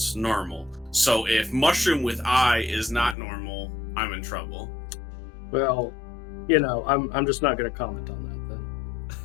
normal. So if mushroom with eye is not normal, I'm in trouble. Well, I'm just not going to comment on that then.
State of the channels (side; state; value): right; drops out; at 3.2 s